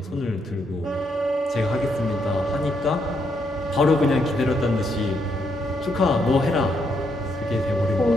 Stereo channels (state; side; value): normal; both; correlation 0.77